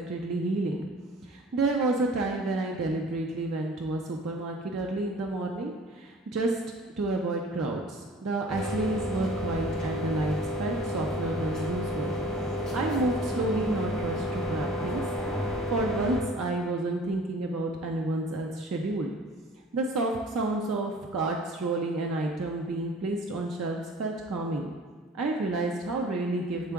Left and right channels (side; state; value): both; normal; correlation 0.47